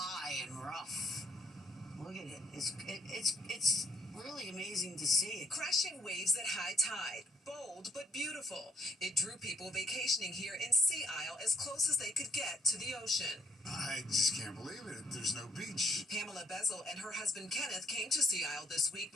and rough. Look at it. It's really amazing to see. Crashing waves at high tide, bold but beautiful. It drew people vacationing here in Sea Isle as close as they could get to the ocean. I just can't believe it. There's no beach. Pamela Bezel and her husband Kenneth came to Sea Isle this week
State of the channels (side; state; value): both; normal; correlation 0.66